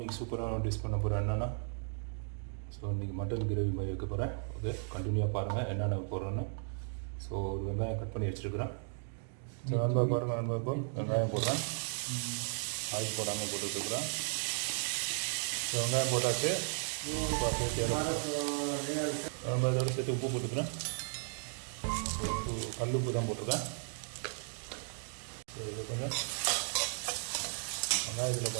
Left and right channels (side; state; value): left; silent; 54 dB below the other